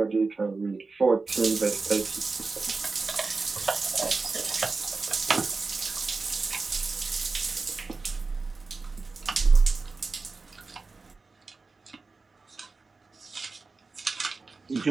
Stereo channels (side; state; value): left; quieter; 4.0 dB